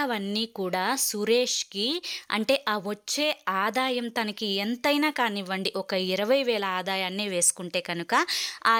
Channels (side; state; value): both; identical; correlation 1.00